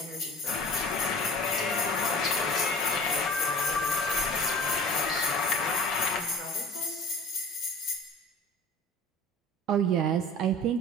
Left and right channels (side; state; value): both; normal; correlation 0.42